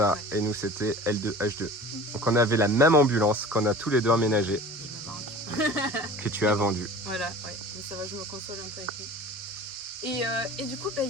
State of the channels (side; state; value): both; normal; correlation 0.41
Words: Ouais. et nous c'était L2 H2. Donc on avait la même ambulance qu'on a tous les deux emménagé, Il me manque. que tu as vendue. Voilà, ouais. Mais ça va, je me console un peu avec lui. Et du coup, il